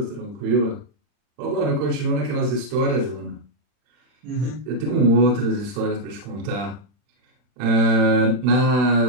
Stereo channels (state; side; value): late; left; 40 ms